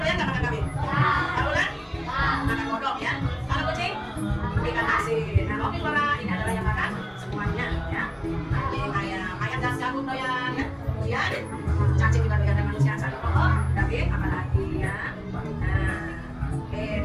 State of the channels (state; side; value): identical; both; correlation 1.00